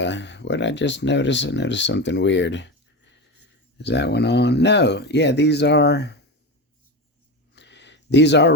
what did I just notice? I noticed something weird. Is that one on? No. Yeah, these are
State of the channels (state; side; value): normal; both; correlation 0.21